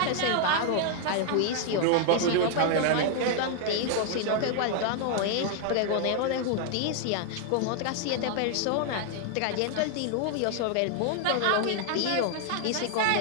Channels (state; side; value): different; both; correlation 0.00